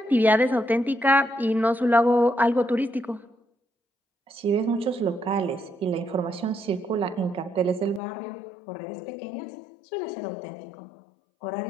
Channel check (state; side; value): drops out; right; at 8.0 s